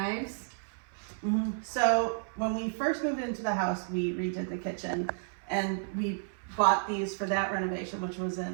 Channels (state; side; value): silent; left; 56 dB below the other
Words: Mm-hmm. So when we first moved into the house, we redid the kitchen, and we bought these for that renovation, which was